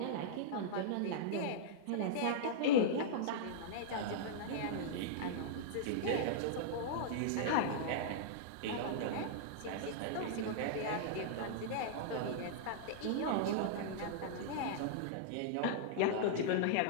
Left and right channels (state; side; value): different; both; correlation -0.02